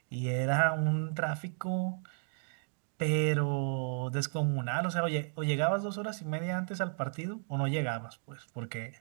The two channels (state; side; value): silent; left; 55 dB below the other